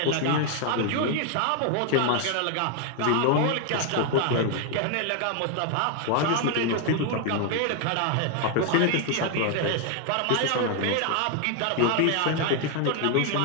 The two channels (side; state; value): both; different; correlation 0.01